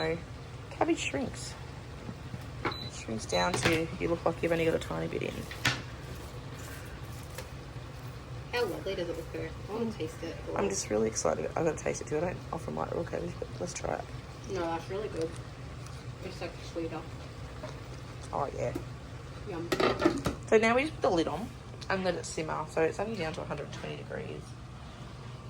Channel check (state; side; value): identical; both; correlation 1.00